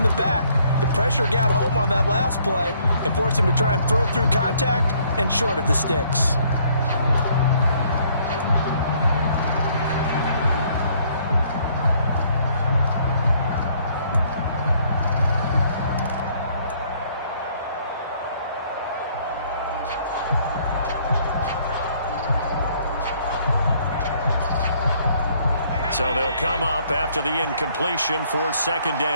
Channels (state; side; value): inverted; both; correlation -0.64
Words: the back. The pressure got home on that last play and forced him to try and throw through contact and short of the sticks. So they'll come up after the incompletion for second